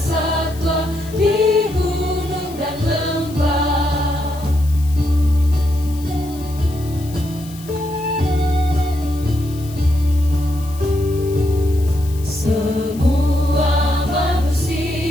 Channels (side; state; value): left; noise; hiss, 19 dB below the sound